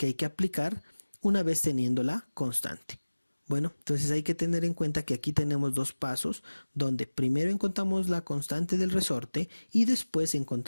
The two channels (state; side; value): inverted; both; correlation -1.00